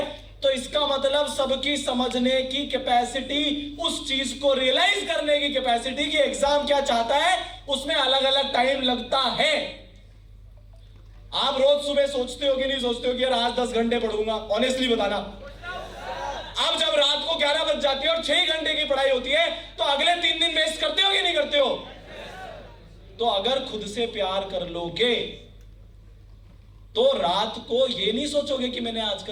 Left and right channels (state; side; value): identical; both; correlation 1.00